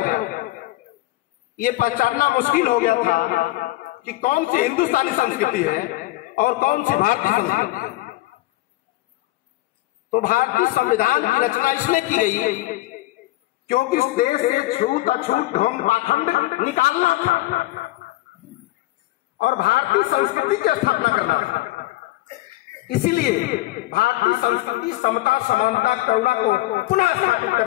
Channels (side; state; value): right; quieter; 18.2 dB